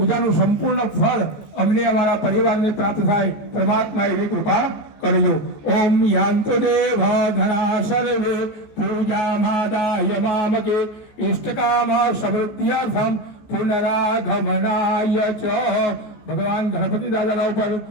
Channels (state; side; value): late; right; 14 ms